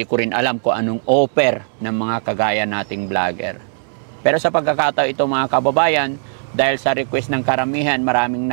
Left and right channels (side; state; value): left; silent; 66 dB below the other